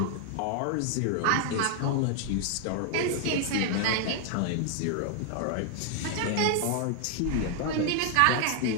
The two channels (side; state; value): both; different; correlation 0.00